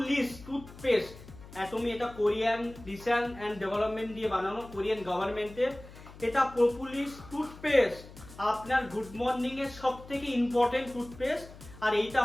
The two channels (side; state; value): left; noise; hum, 18 dB below the sound